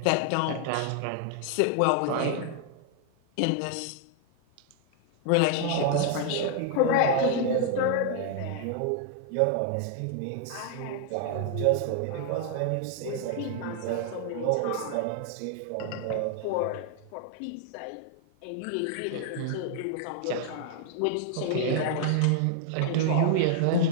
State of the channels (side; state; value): both; different; correlation 0.00